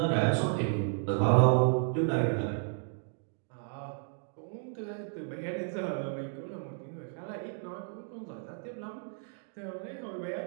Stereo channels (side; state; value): left; silent; 56 dB below the other